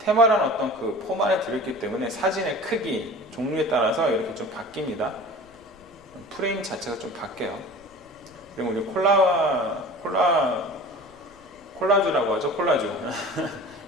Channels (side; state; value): left; noise; rumble, 28 dB below the sound